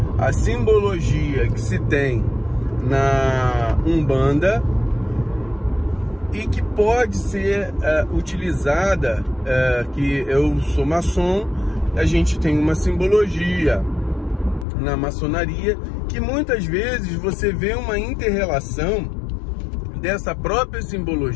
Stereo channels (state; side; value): drops out; right; at 14.7 s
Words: A simbologia que se tem na Umbanda e que pode ser utilizada, que eu sou maçom, a gente tem uma simbologia na maçonaria, que muitas vezes você vê uma inter-relação dessa própria